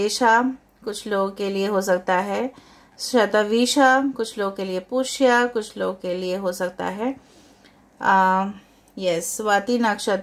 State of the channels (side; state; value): both; identical; correlation 1.00